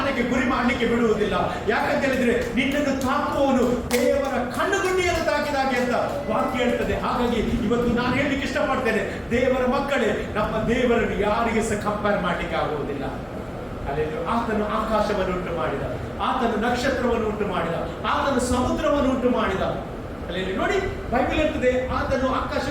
ಗುರಿ ಮಾಡಲಿಕ್ಕೆ ಬಿಡುವುದಿಲ್ಲ. ಯಾಕಂತ ಹೇಳಿದ್ರೆ ನಿನ್ನನ್ನು ತಾಕುವವನು ದೇವರ ಕಣ್ಣುಗುಂಡಿಯನ್ನು ತಾಕಿದಾಗೆ ಅಂತ ವಾಕ್ಯ ಹೇಳ್ತದೆ. ಹಾಗಾಗಿ ಇವತ್ತು ನಾನು ಹೇಳಲಿಕ್ಕೆ ಇಷ್ಟಪಡ್ತೇನೆ, ದೇವರ ಮಕ್ಕಳೇ, ನಮ್ಮ ದೇವರನ್ನು ಯಾರಿಗೆ ಸಹ ಕಂಪೇರ್ ಮಾಡಲಿಕ್ಕೆ ಆಗುವುದಿಲ್ಲ. ಅಲ್ಲಿ ಆತನು ಆಕಾಶವನ್ನು ಉಂಟು ಮಾಡಿದ, ಆತನು ನಕ್ಷತ್ರವನ್ನು ಉಂಟು ಮಾಡಿದ, ಆತನು ಸಮುದ್ರವನ್ನು ಉಂಟು ಮಾಡಿದ. ಅಲ್ಲಿ ನೋಡಿ ಬೈಬಲ್ ಇರ್ತದೆ, ಆತನು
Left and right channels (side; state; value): both; identical; correlation 1.00